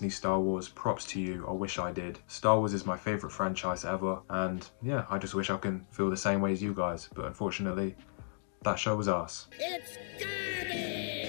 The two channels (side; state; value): right; silent; digital silence